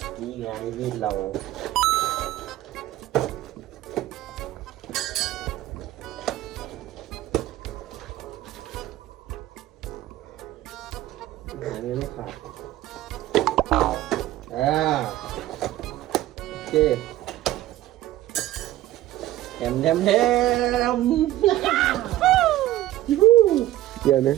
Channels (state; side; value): quieter; left; 14.9 dB